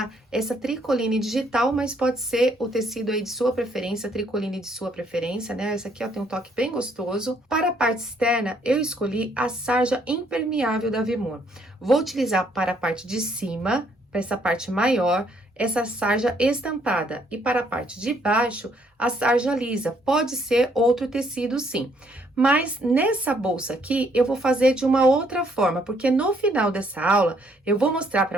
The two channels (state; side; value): normal; both; correlation 0.68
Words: essa tricoline digital, mas pode ser o tecido aí de sua preferência, tricoline de sua preferência, né? Essa aqui, ó, tem um toque bem gostoso. Para a parte externa, eu escolhi a sarja impermeável da Avimor. Vou utilizar para a parte de cima, para essa parte maior, essa sarja estampada, e para a parte de baixo, a sarja lisa. Pode ser outro tecido sim, mas nessa bolsa aqui eu vou fazer de uma outra forma, porque no final dessa aula eu vou mostrar para